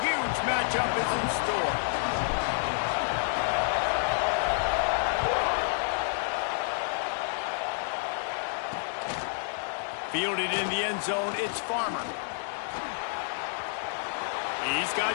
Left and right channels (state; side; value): silent; right; 58 dB below the other